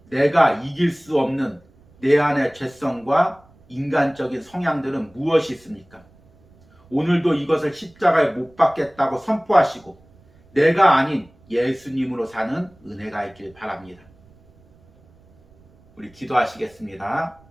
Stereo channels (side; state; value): right; noise; rumble, 29 dB below the sound